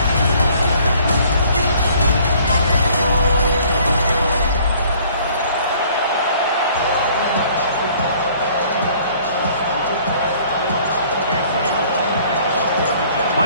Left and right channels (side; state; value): both; inverted; correlation -0.57